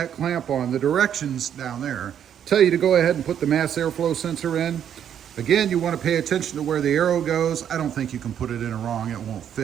clamp on, the directions down there tell you to go ahead and put the mass airflow sensor in. Again, you want to pay attention to where the arrow goes. I don't think you can put it in wrong, it won't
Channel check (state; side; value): quieter; left; 9.3 dB